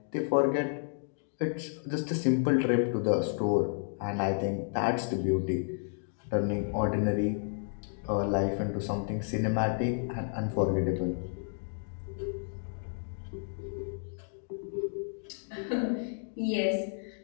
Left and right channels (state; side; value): silent; right; digital silence